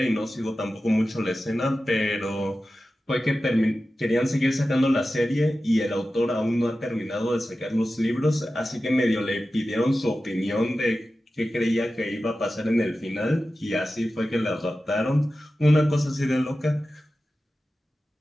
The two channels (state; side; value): normal; both; correlation 0.94